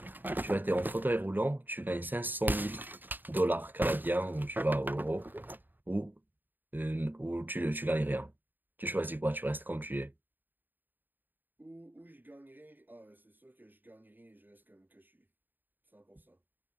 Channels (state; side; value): late; left; 0.091 ms